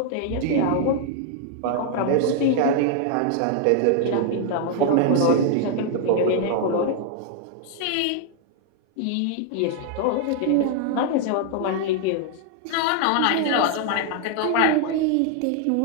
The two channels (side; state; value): both; different; correlation 0.00